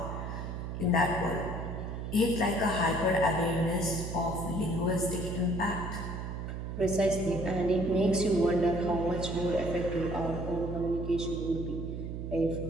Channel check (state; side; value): noise; right; hum, 5 dB below the sound